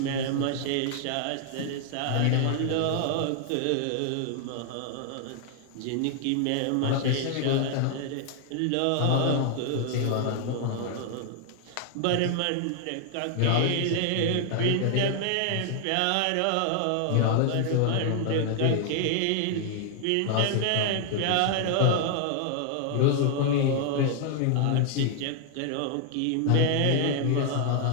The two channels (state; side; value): different; both; correlation 0.00